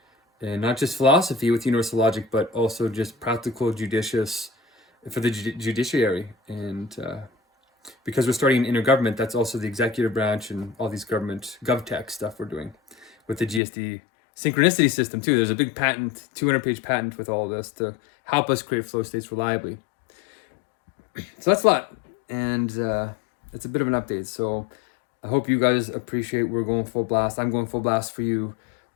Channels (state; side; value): drops out; right; at 13.6 s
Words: And not just philosophy with universal logic, but also just practical, judicious for the judiciary. And because we're starting an intergovernment, that's also the executive branch and all these government GovTech stuff we're doing with the GSD synchronicity system too. There's a big patent, 200-page patent with all of this to help us create flow states reliably. So that's a lot. And it's a bit of an update. So I hope you guys appreciate we're going full blast. I'm going full blast for you.